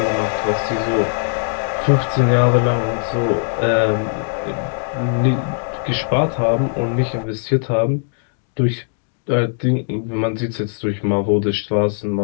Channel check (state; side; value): silent; right; digital silence